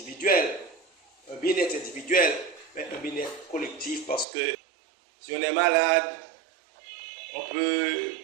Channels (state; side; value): drops out; left; at 4.2 s